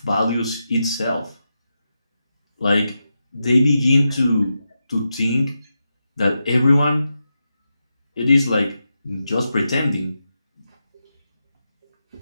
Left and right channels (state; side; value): inverted; both; correlation -0.88